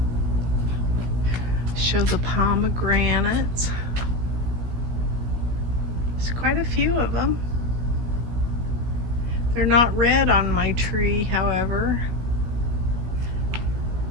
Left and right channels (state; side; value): late; left; 16 ms